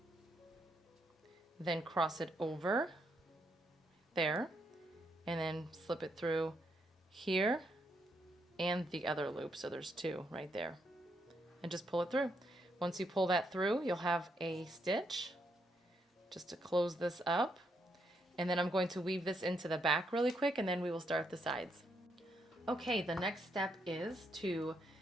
then cross it over there, and then slip it through here and the other loop. So there's 2 right there, and just pull it through. Once you pull that through, you'll have a stitch, just to close this up. And then I'm going to weave this into the back really quick, and then we will start the sides. Okay, the next step is to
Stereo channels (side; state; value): both; normal; correlation 0.77